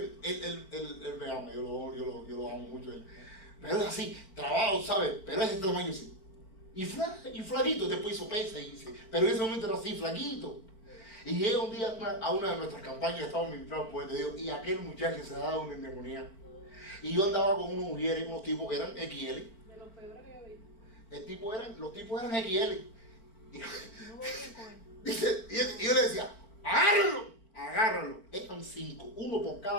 él me ama, yo lo amo mucho. Pero es así, trabado, ¿sabes? Pero es ese tamaño sí. Y flaquito, después hizo pesa, pero en ese momento era así, flaquito. Y llega un día a una de nuestras campañas, estábamos ministrando por Dios, y aquel muchacho se daba una endemoniada. Y yo andaba con unos mujeres, unos tipos que eran XL. De los peores que yo vi. Los tipos eran XL. Y, No voy bien con él. dice, y yo le decía, agárralo. Eran 5, uno por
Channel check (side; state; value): right; late; 4.4 ms